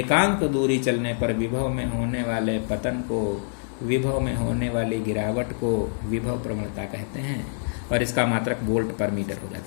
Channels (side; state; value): right; silent; digital silence